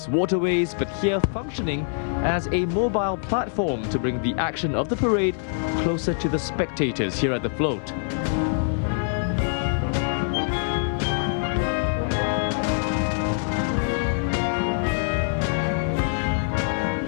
waterways, but here functioning as a mobile platform to bring the action of the parade closer to the spectators here at the float.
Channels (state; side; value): silent; right; 61 dB below the other